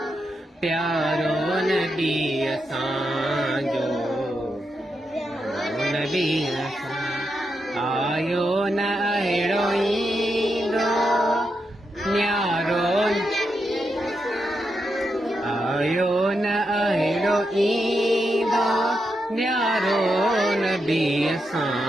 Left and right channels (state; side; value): normal; both; correlation 0.85